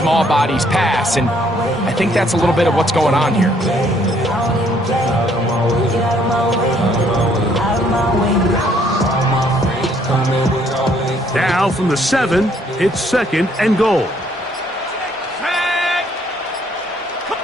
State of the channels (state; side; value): normal; both; correlation 0.65